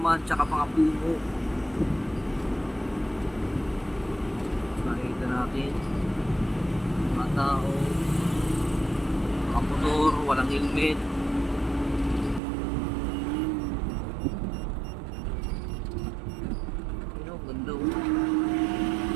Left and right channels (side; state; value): left; drops out; at 12.4 s